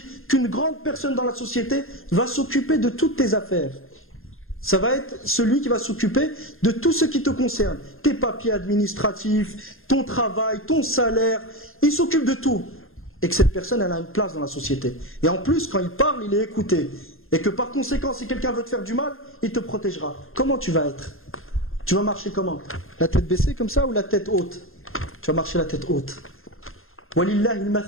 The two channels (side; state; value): right; late; 0.61 ms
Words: qu'une grande personne dans la société va s'occuper de toutes tes affaires, ça va être celui qui va s'occuper de tout ce qui te concerne. Tes papiers administratifs, ton travail, ton salaire, il s'occupe de tout. Et que cette personne, elle a une place dans la société. Et en plus, quand il parle, il est écouté. Et que par conséquent, si quelqu'un veut te faire du mal, il te protégera. Comment tu vas être? Tu vas marcher comment? La tête baissée comme ça ou la tête haute? Tu vas marcher la tête haute. Walillahi